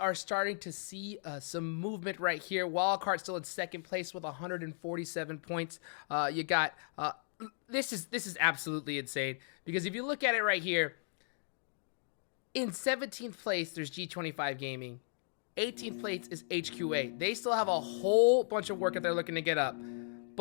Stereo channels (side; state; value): right; silent; digital silence